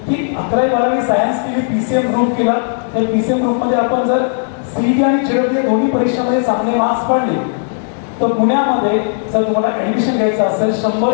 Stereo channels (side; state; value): right; silent; digital silence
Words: की 11वी-12वी सायन्स केली, PCM ग्रुप केला. त्या PCM ग्रुप मध्ये आपण जर CET आणि JEE दोन्ही परीक्षांमध्ये चांगले मार्क्स पडले तर पुण्यामध्ये जर तुम्हाला ऍडमिशन घ्यायचं असेल,